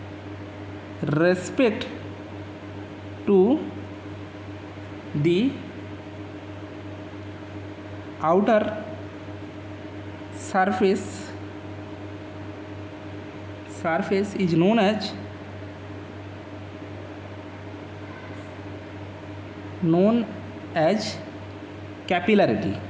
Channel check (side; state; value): both; identical; correlation 1.00